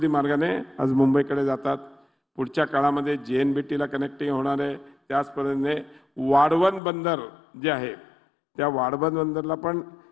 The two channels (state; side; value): drops out; right; at 6.8 s